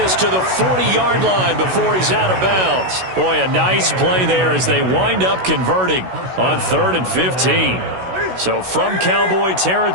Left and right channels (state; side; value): late; left; 16 ms